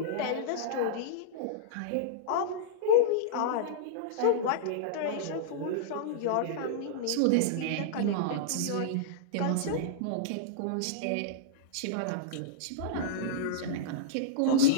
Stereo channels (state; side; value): different; both; correlation -0.02